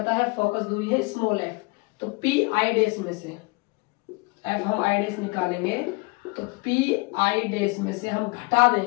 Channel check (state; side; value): quieter; right; 27.3 dB